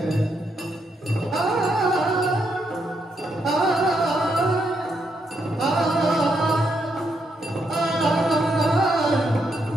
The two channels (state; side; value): normal; both; correlation 0.79